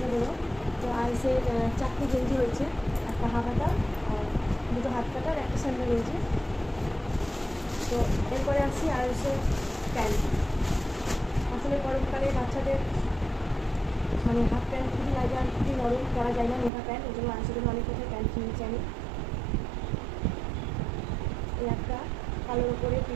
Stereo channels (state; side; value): drops out; left; at 16.7 s